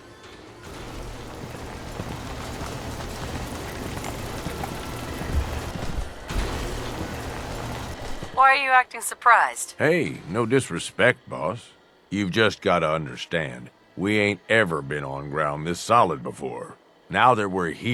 Why are you acting surprised? Hey, no disrespect, boss. You've just gotta understand. We ain't ever been on ground this solid before. Now that we're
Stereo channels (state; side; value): identical; both; correlation 1.00